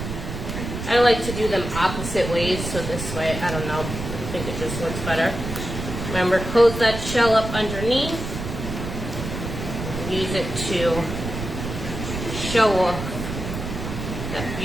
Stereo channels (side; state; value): right; noise; rumble, 6 dB below the sound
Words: I like to do them opposite ways, so this way, I don't know, I think it just looks better. Remember, close that shell up underneath. Use it to show off that